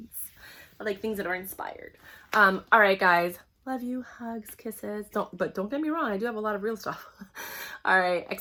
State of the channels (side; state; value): both; identical; correlation 1.00